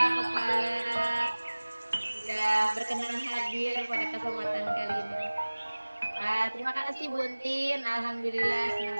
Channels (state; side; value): inverted; both; correlation -1.00